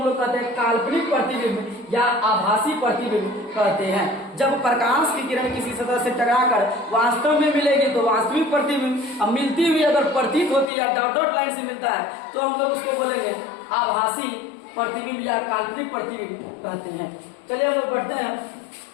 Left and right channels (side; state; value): right; drops out; at 10.7 s